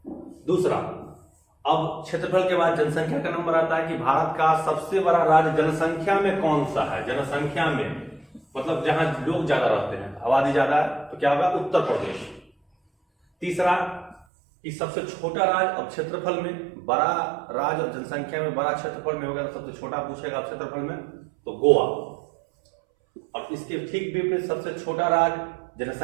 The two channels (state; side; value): drops out; left; at 14.2 s